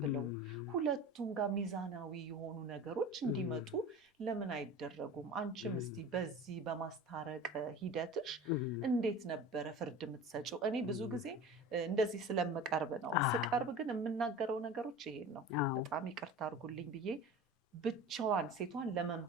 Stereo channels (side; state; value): both; normal; correlation 0.36